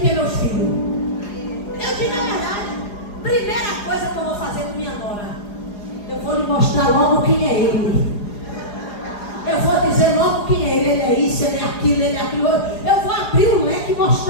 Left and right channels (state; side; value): late; right; 4.9 ms